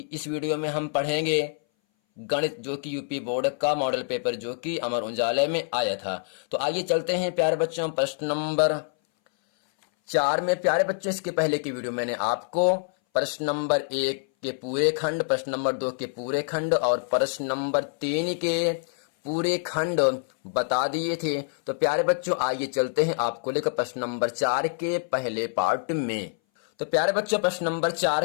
इस वीडियो में हम पढ़ेंगे गणित, जो कि यूपी बोर्ड का मॉडल पेपर जो कि अमर उजाला में आया था। तो आइए चलते हैं प्यारे बच्चों प्रश्न नंबर 4 में। प्यारे बच्चों, इसके पहले की वीडियो मैंने आपको प्रश्न नंबर 1 के पूरे खंड, प्रश्न नंबर 2 के पूरे खंड और प्रश्न नंबर 3 के पूरे खंड बता दिए थे। तो प्यारे बच्चों, आइए चलते हैं आपको लेकर प्रश्न नंबर 4 के पहले पार्ट में। तो प्यारे बच्चों, प्रश्न नंबर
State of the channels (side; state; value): right; silent; 59 dB below the other